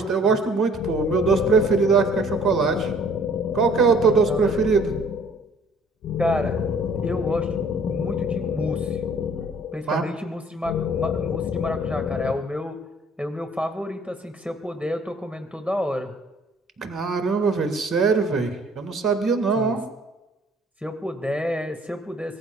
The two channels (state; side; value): normal; both; correlation 0.56